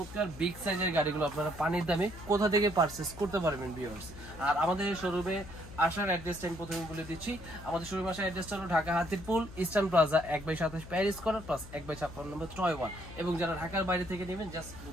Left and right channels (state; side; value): noise; left; hum, 15 dB below the sound